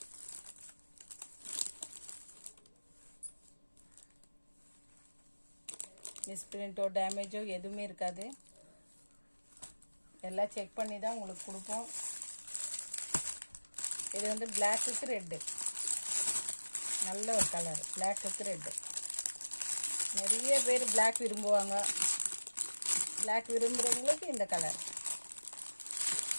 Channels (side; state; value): both; inverted; correlation -1.00